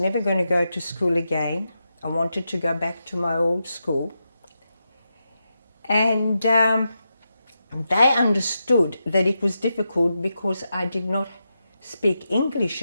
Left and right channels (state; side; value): inverted; both; correlation -0.87